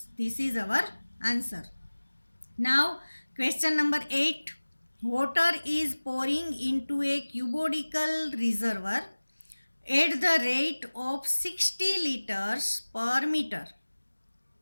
This is our answer. Now question number 8. Water is pouring into a cubodical reservoir at the rate of 60 liters per meter.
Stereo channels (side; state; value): both; inverted; correlation -1.00